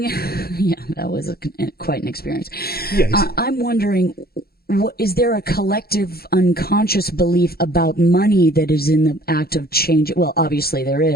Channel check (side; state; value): right; late; 0.45 ms